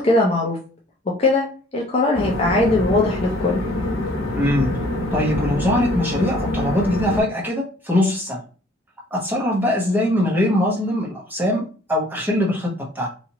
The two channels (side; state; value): both; normal; correlation 0.55